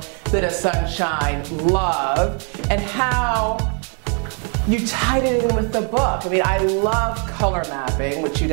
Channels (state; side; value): quieter; left; 39.5 dB